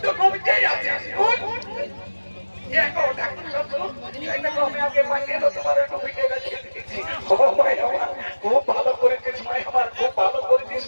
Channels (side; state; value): both; inverted; correlation -1.00